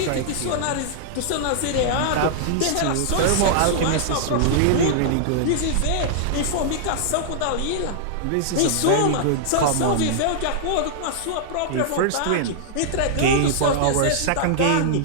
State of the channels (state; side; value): different; both; correlation -0.01